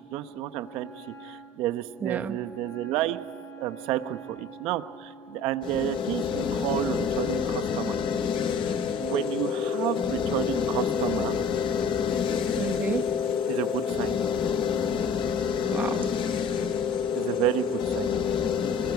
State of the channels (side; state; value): both; normal; correlation 0.45